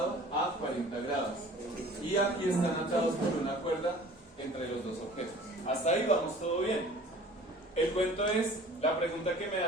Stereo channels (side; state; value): both; normal; correlation 0.47